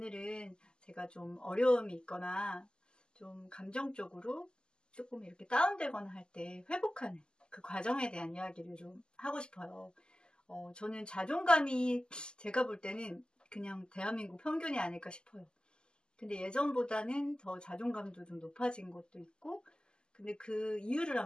제가 좀 어려움이 있거나 좀 감정적으로 조금 이렇게 다운되거나 할 때 회복하는 그 과정에 대한 이야기를 좀 하고 싶어요. 저는 자존감이 제가 볼 때는 그냥 대한민국 평균이 아닐까 싶어요. 근데 예전보다는 더 자존감도 좀 높아진 것도 있고, 근데 그 이유를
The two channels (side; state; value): right; late; 0.047 ms